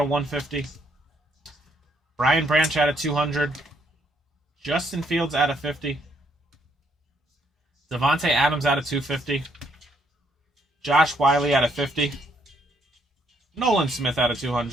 150. Brian Branch out of 200. Justin Fields out of 50. Devontae Adams out of 250. Josh Wiley out of 50. Nolan Smith out of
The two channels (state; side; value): normal; both; correlation 0.71